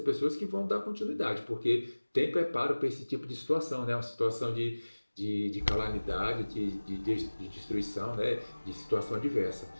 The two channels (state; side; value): inverted; both; correlation -1.00